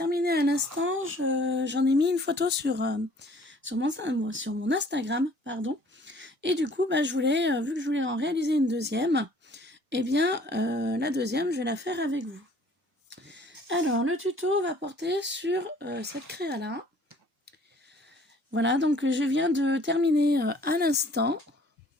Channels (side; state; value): both; normal; correlation 0.55